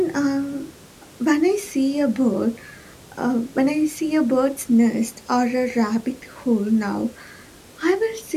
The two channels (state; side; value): identical; both; correlation 1.00